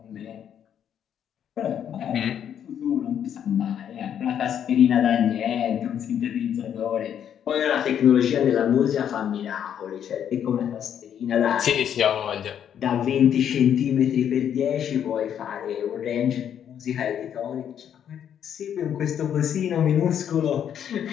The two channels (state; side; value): quieter; right; 9.2 dB